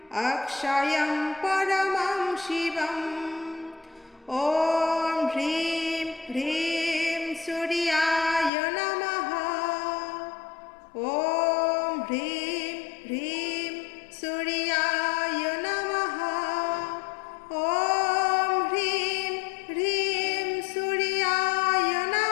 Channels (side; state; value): right; drops out; at 8.5 s